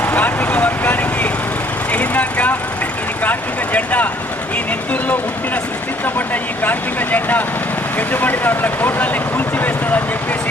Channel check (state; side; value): normal; both; correlation 0.61